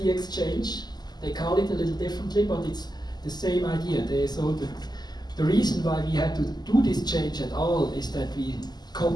exchange. They call it a little differently, but it's the same idea. The reason why we had to do this change at all is that we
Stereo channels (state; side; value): late; right; 0.20 ms